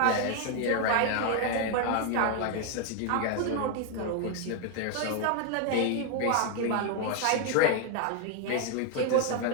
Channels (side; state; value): both; different; correlation 0.01